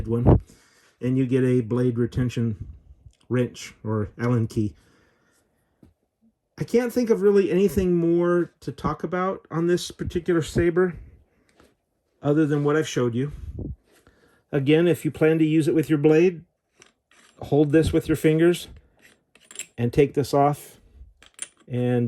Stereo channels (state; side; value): identical; both; correlation 1.00